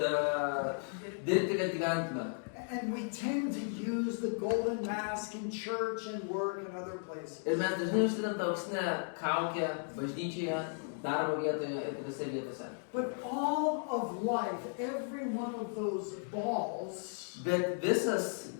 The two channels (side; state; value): right; silent; 54 dB below the other